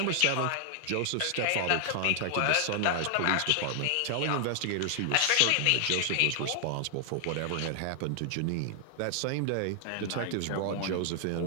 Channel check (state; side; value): different; both; correlation 0.00